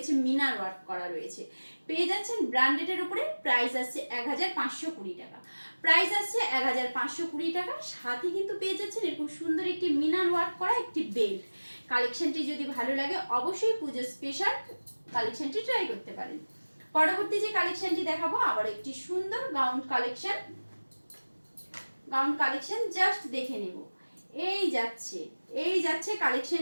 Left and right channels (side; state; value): both; inverted; correlation -1.00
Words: মিনার ওয়ার্ক করা রয়েছে, পেয়ে যাচ্ছেন ব্র্যান্ডেডের উপরে। প্রাইস আসছে 1520 টাকা। প্রাইস আসছে 1520 টাকা। সাথে কিন্তু পেয়ে যাচ্ছেন এরকম সুন্দর একটি মিনার ওয়ার্ক করা একটি বেল্ট। কালেকশনটি যদি ভালো লাগে অবশ্যই পুজো স্পেশাল কালেকশনটি ট্রাই করতে পারেন। পরবর্তী যে কালেকশনটি দেখাবো আবার একটি সুন্দর gown collection. Gown collection just দেখে নেব। এই যাচ্ছে